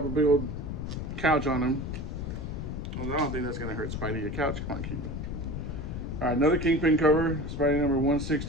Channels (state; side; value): noise; left; rumble, 5 dB below the sound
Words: a big old couch on him. Well, I don't think that's gonna hurt Spidey. Your couch, come on, Kingpin. All right, another Kingpin cover. Spidey number